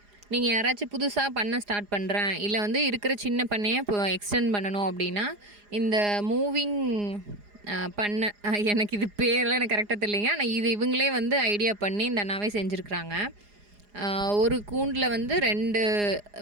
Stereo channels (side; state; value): left; late; 4.9 ms